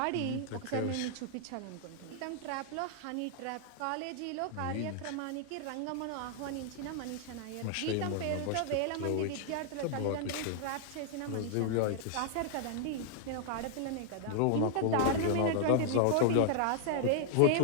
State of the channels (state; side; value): different; both; correlation -0.01